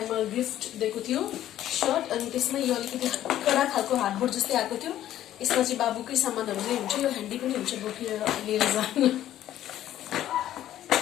गिफ्ट दिएको थियो सर्ट, अनि त्यसमा यो अलिकति कडा खालको हार्डबोर्ड जस्तै आएको थियो। यसमा चाहिँ बाबुकै सामानहरू नै हुन्छ। यो ह्यान्डी पनि हुन्छ बोकेर लिएर जानु।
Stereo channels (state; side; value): quieter; right; 12.5 dB